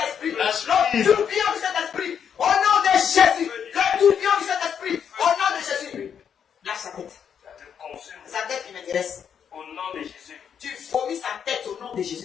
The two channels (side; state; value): right; quieter; 7.9 dB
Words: L'esprit. Le tourbillon du Saint-Esprit. Au nom de Jésus. Le tourbillon du Saint-Esprit. Au nom de Jésus. Lâche sa tête. Ça te consume. Sa tête qui m'intéresse. Au nom de Jésus. Tu vomis sa tête au nom de